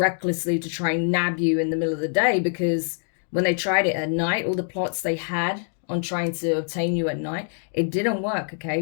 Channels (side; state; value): right; silent; digital silence